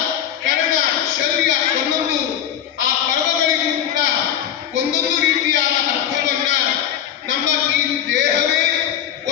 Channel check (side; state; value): right; quieter; 10.0 dB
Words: ಕರ್ಣ, ಶೌರ್ಯ, ಒಂದೊಂದು ಆ ಪರ್ವಗಳಿಗೂ ಕೂಡ ಒಂದೊಂದು ರೀತಿಯಾದ ಅರ್ಥವನ್ನ ನಮ್ಮ ಈ ದೇಹವೇ